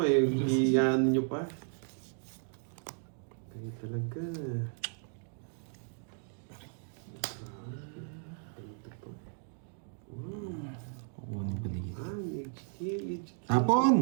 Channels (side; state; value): left; silent; 55 dB below the other